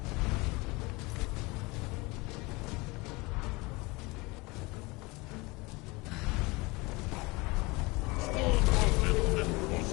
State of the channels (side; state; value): right; quieter; 24.4 dB